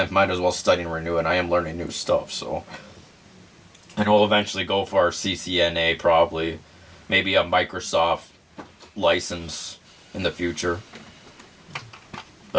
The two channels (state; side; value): identical; both; correlation 1.00